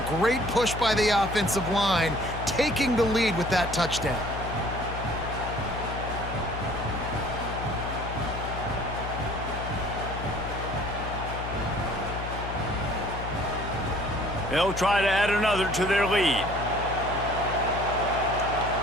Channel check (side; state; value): left; noise; hum, 7 dB below the sound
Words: Great push by the offensive line, taking the lead with that touchdown. They'll try to add another to their lead.